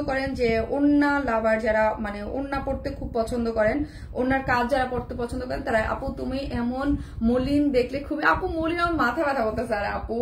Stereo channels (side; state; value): both; identical; correlation 1.00